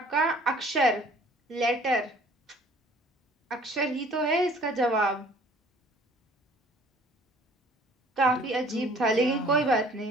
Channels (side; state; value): both; normal; correlation 0.54